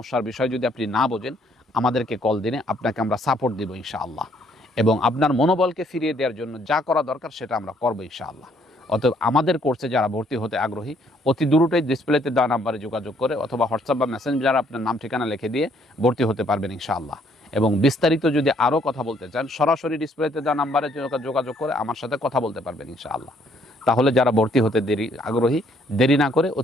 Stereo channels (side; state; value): both; normal; correlation 0.66